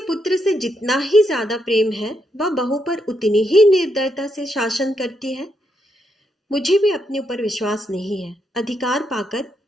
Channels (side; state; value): both; normal; correlation 0.79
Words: से जितना ही ज्यादा प्रेम है, वह बहू पर उतनी ही निर्दयता से शासन करती है। मुझे भी अपने ऊपर विश्वास नहीं है। अधिकार पाकर